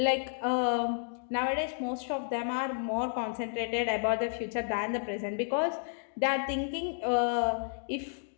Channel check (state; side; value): silent; right; digital silence